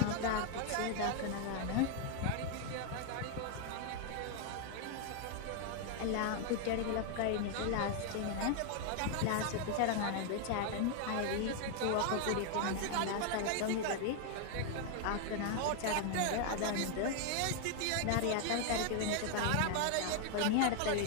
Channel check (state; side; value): different; both; correlation 0.00